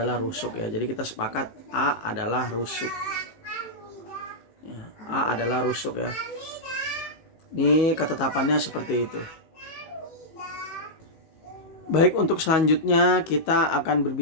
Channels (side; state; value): right; late; 19 ms